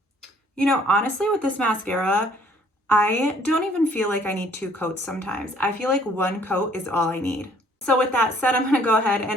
You know, honestly, with this mascara, I don't even feel like I need 2 coats sometimes. I feel like 1 coat is all I need. So with that said, I'm gonna go ahead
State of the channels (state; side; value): normal; both; correlation 0.60